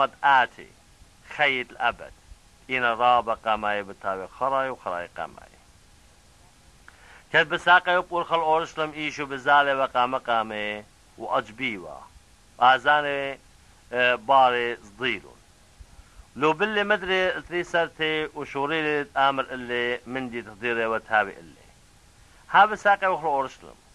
آتي خيط الأبد إن رابا قاماي بتاوي خراي وخراي قاماي كد بساقي وبقول خل أورشلم إيشو بزالي وقام قامي وأجبيوا وآزاني باري صديلون لو باللي مدري تريسرتي وشوريلي آمر اللي مندي تقديري وتهابي اللي ها بساقي وخل أورشلم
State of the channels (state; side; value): identical; both; correlation 1.00